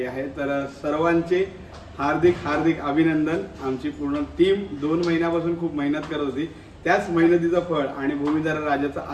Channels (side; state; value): both; identical; correlation 1.00